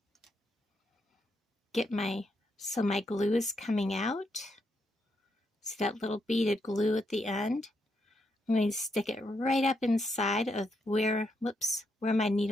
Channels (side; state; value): both; normal; correlation 0.80